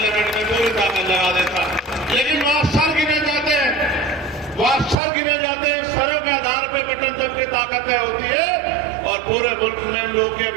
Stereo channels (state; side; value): drops out; left; at 5.0 s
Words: में पूरी ताकत लगा देता। लेकिन वहां सर गिने जाते हैं, वहां सर गिने जाते हैं, सरों के आधार पर बटन दब की ताकतें होती है और पूरे मुल्क में हम लोगों की